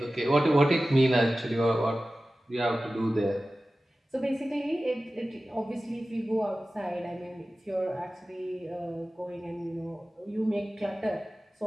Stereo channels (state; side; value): normal; both; correlation 0.96